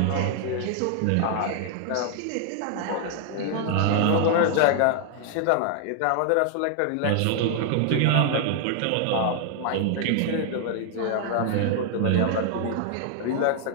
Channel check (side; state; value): both; different; correlation 0.00